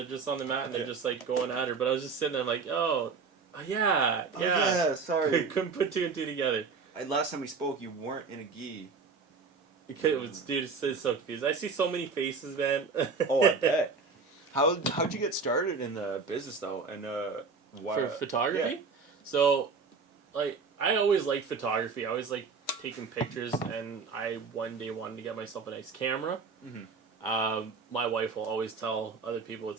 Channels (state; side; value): quieter; left; 4.8 dB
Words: just on the mat, and they're just, like, going at her. But I was just sitting there, like, yeah. Sorry. Couldn't put two and two together. Last time we spoke, you weren't in a gi. Dude, it's so confused. I see so many faces, man. Oh, I bet. How'd you get started in the business though, and why? For photography? Yeah. So, like, I always liked photography. I always liked taking pictures, and I one day wanted to get myself a nice camera. Mm-hmm. My wife will always tell other people